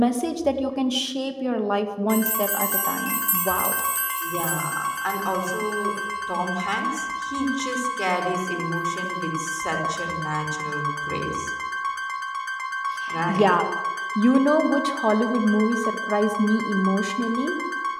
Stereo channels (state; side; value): identical; both; correlation 1.00